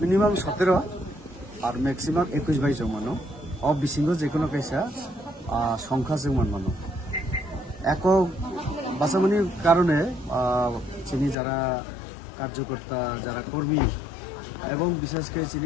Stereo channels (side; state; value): right; drops out; at 11.4 s